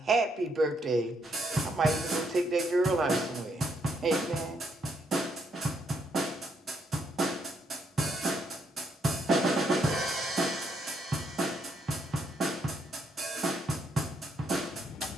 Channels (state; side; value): normal; both; correlation 0.74